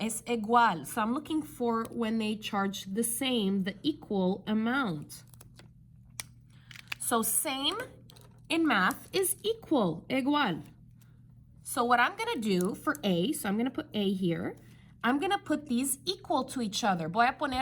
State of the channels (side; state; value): both; identical; correlation 1.00